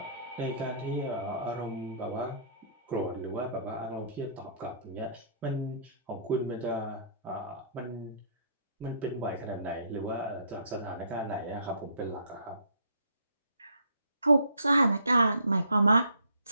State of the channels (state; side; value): inverted; both; correlation -0.60